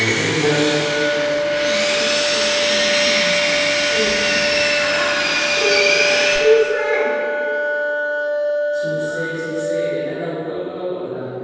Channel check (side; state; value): both; identical; correlation 1.00